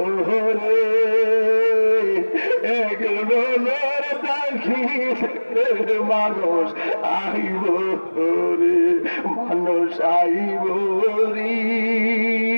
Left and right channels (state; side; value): inverted; both; correlation -1.00